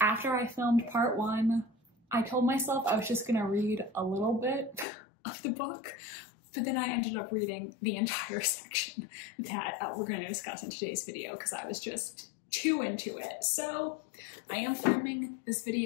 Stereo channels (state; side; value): drops out; right; at 4.9 s